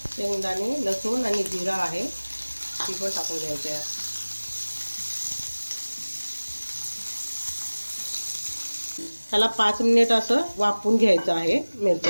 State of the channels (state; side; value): inverted; both; correlation -1.00